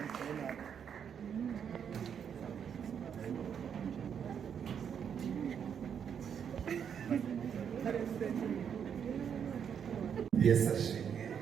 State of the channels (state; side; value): quieter; left; 7.8 dB